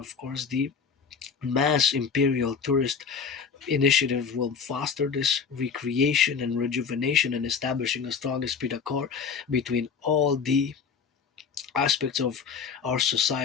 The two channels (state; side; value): quieter; right; 6.0 dB